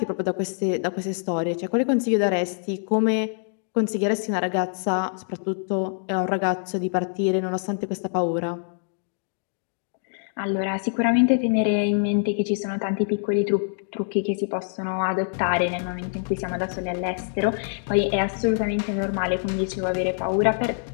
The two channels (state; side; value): silent; right; digital silence